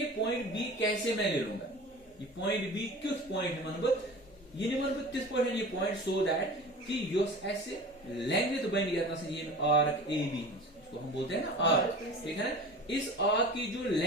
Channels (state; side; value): normal; both; correlation 0.37